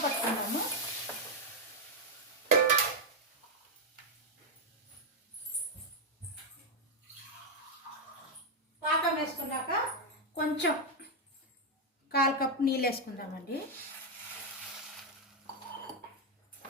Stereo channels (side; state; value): both; normal; correlation 0.01